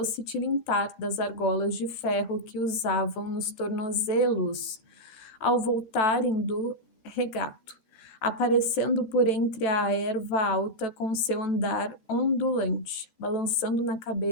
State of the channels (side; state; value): right; late; 13 ms